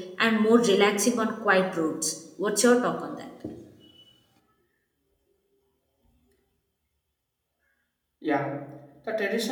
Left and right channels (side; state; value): both; identical; correlation 1.00